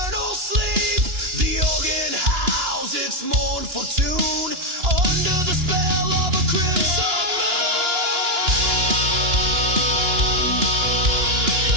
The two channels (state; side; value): late; left; 2.9 ms